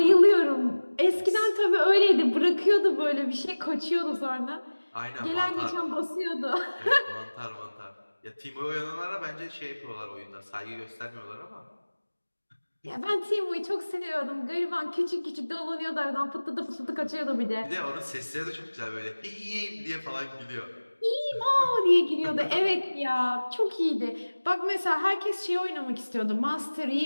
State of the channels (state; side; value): inverted; both; correlation -1.00